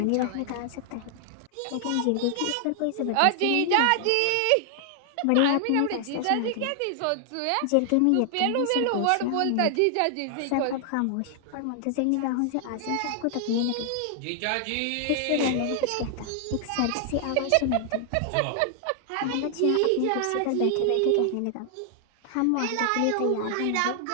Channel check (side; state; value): both; different; correlation 0.00